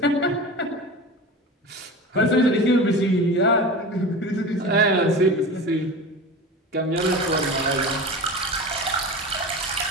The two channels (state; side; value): normal; both; correlation 0.31